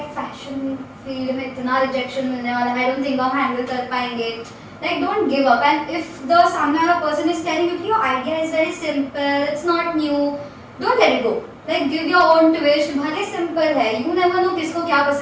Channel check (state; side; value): identical; both; correlation 1.00